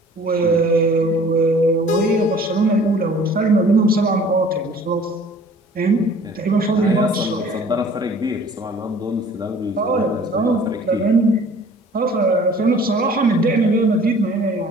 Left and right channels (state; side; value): normal; both; correlation 0.50